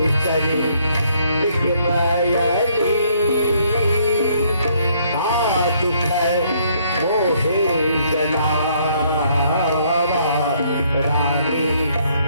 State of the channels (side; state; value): both; inverted; correlation -0.67